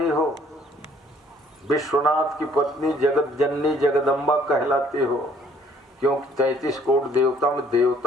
हो, विश्वनाथ की पत्नी जगत जननी जगदम्बा कहलाती हो, क्योंकि 33 करोड़ देवता में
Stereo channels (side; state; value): both; normal; correlation 0.60